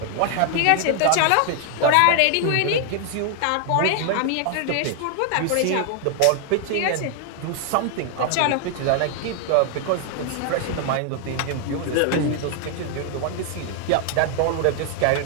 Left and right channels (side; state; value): both; different; correlation 0.00